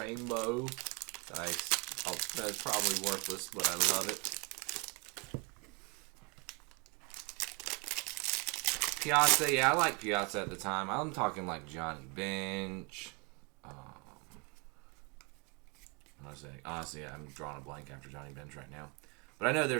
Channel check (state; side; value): quieter; left; 30.2 dB